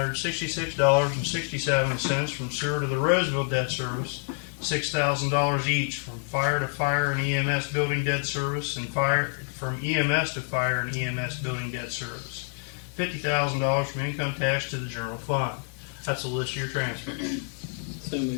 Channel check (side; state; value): right; quieter; 38.5 dB